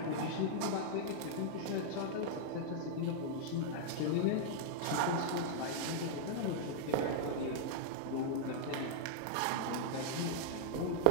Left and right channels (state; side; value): different; both; correlation -0.01